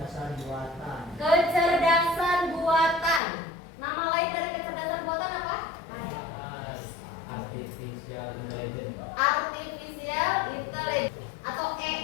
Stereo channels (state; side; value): drops out; right; at 3.2 s